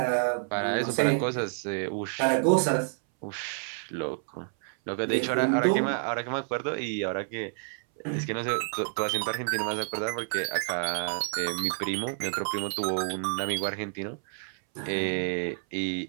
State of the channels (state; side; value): silent; left; 59 dB below the other